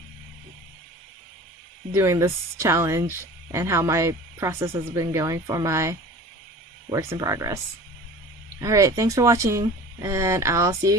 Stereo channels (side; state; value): both; normal; correlation 0.41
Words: doing this challenge and how my process has been going for my works in progress. Alright, thanks for watching, and I'll see